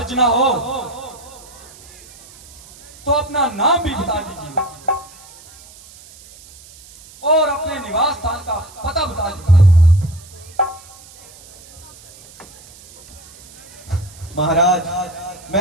ना हो तो अपना नाम भी बता दीजिए और अपने निवास स्थान का पता बता दीजिए। महाराज,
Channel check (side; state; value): right; noise; hiss, 21 dB below the sound